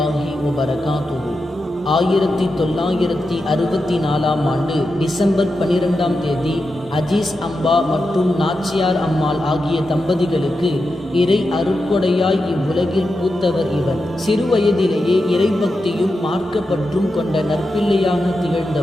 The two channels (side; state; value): both; normal; correlation 0.89